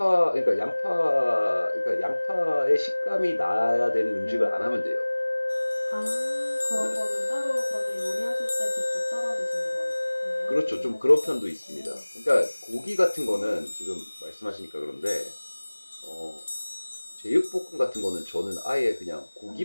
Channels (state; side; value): inverted; both; correlation -1.00